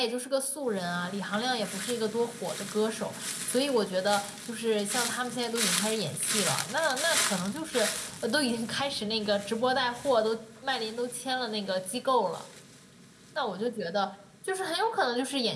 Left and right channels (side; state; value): both; identical; correlation 1.00